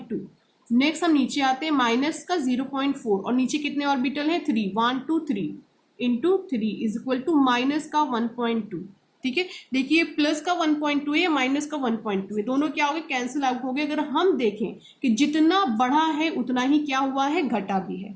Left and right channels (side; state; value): both; identical; correlation 1.00